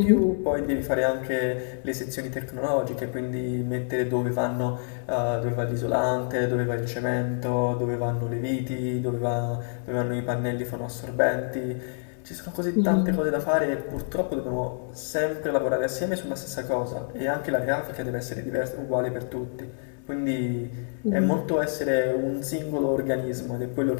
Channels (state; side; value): silent; right; 60 dB below the other